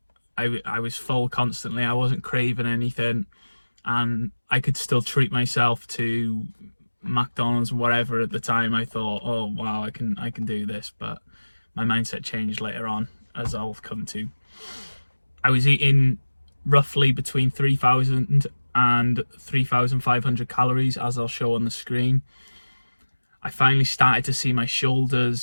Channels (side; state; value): both; inverted; correlation -1.00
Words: I was full constantly. I wasn't craving anything, and I could still treat myself to McDonald's and whatever. At the time I thought, oh wow, I can do this, but my mindset changed later on, as I'll come to. I was eating roughly between 3,000 and 3,500 calories, as I'll show on the screen. I finally started to see my